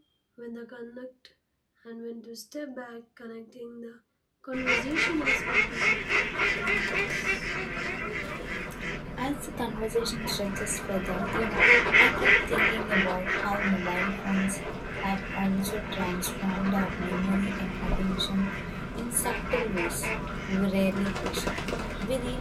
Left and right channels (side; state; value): both; identical; correlation 1.00